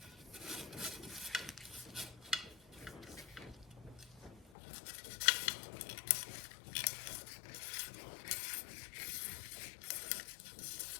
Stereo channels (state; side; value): drops out; right; at 4.5 s